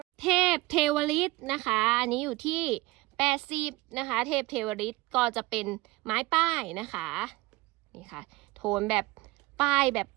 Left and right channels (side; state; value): left; quieter; 20.6 dB